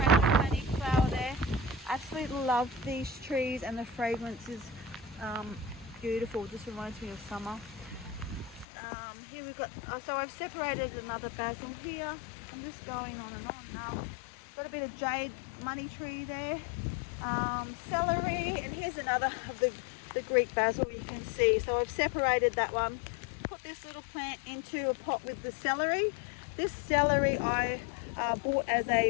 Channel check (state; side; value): drops out; right; at 8.7 s